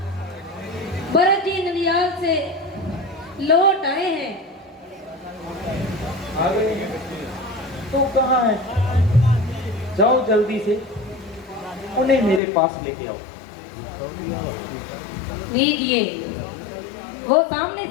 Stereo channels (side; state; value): right; drops out; at 12.4 s